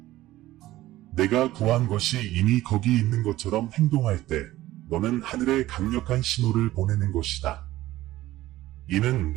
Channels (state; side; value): quieter; left; 15.9 dB